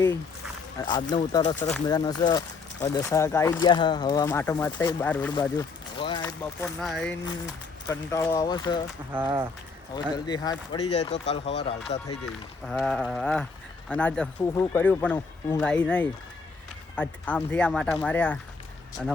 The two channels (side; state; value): right; quieter; 4.5 dB